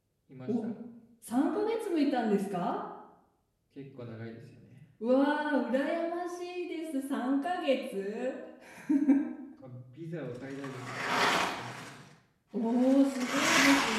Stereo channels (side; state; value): both; identical; correlation 1.00